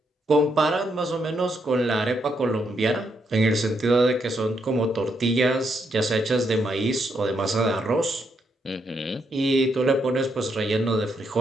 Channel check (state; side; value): normal; both; correlation 0.78